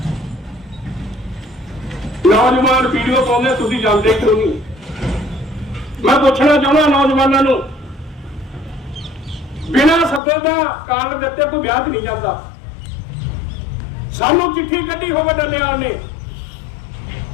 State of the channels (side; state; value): right; drops out; at 10.2 s